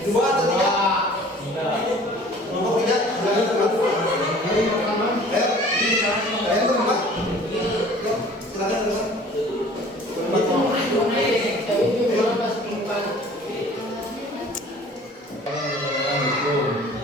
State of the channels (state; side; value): normal; both; correlation 0.49